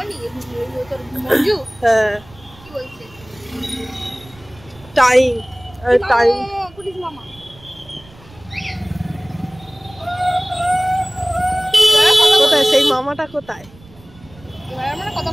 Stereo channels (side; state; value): right; noise; rumble, 24 dB below the sound